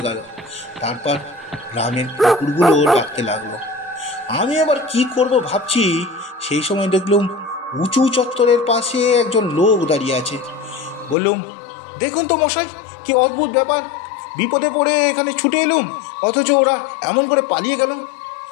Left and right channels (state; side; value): drops out; right; at 11.2 s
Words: গেল। তারপর গ্রামের কুকুরগুলো ডাকতে লাগলো। আমি আবার কি করব ভাবছি, সেই সময় দেখলুম উঁচু চত্বরের পাশে একজন লোক দাঁড়িয়ে আছে। বললুম, দেখুন তো মশাই, কি অদ্ভুত ব্যাপার! বিপদে পড়ে এখানে ছুটে এলুম, অথচ ওরা এমন করে পালিয়ে গেল।